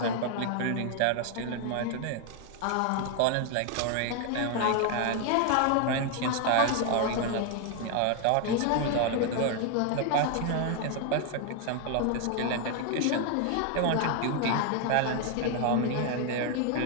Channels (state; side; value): different; both; correlation 0.00